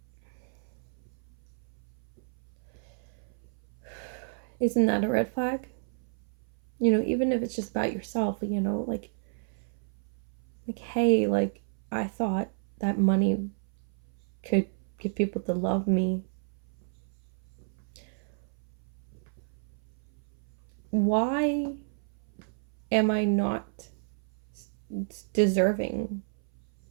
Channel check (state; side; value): silent; left; 57 dB below the other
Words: isn't that a red flag? Even if it's just about yourself, like, hey, like, I thought that money could get people to love me. Why am I not deserving